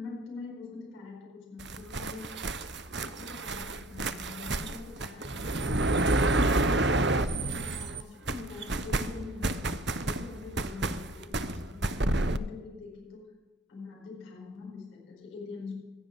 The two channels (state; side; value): normal; both; correlation 0.51